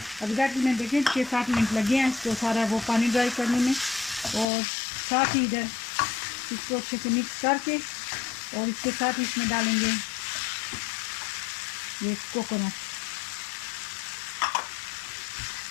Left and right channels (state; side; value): drops out; right; at 4.5 s